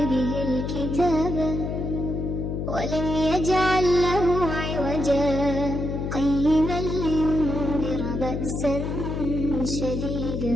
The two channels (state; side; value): noise; left; hum, 3 dB below the sound